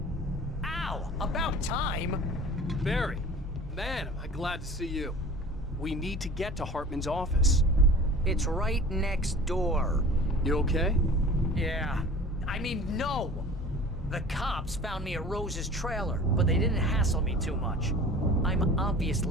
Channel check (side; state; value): both; normal; correlation 0.42